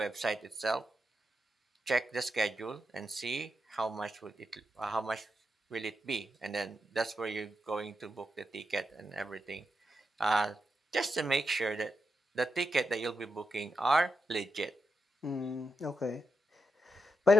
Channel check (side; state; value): both; normal; correlation 0.86